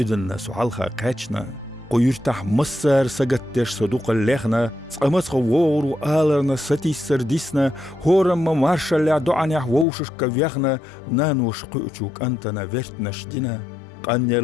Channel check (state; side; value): drops out; right; at 9.9 s